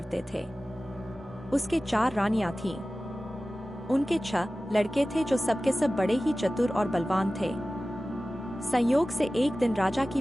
थे। उसके 4 रानियां थीं। उनके 6 लड़के थे जो सबके सब बड़े ही चतुर और बलवान थे। संयोग से एक दिन राजा की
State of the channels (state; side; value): normal; both; correlation 0.96